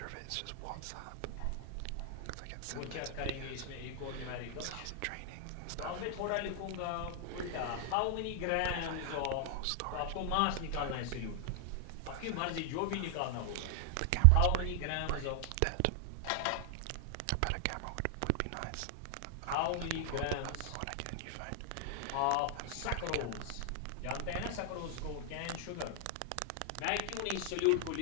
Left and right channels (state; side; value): different; both; correlation 0.00